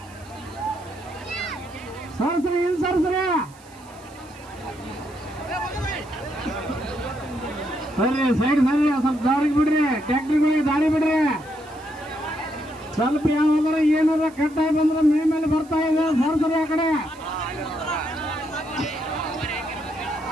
ಸರ್ಸ್ರಿ ಹಿಂದ್ ಸರ್ಸ್ರಿ. ಸರಿ ಸೈಡ್ ಸರಿ ಸ್ವಲ್ಪ ದಾರಿಗೆ ಬಿಡ್ರಿ, ಟ್ಯಾಕ್ಟ್ರಿಗಳಿಗೆ ದಾರಿ ಬಿಡ್ರಿ. ಸ್ವಲ್ಪ ಯಾವಾಗಾರ ಏನಾರ ಕಟ್ಟಾಗಿ ಬಂದ್ರೆ ಮೇಲೆ ಬರ್ತಾ ಇದೆ ಸರ್ಸರಿ ಆ ಕಡೆ.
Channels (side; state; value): right; noise; hiss, 25 dB below the sound